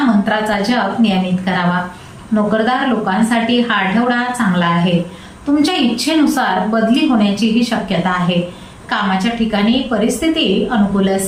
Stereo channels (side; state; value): both; identical; correlation 1.00